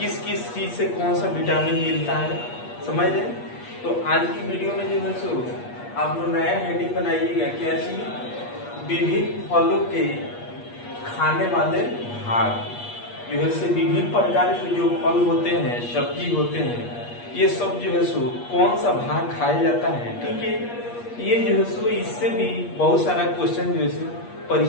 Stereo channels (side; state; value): right; late; 8.4 ms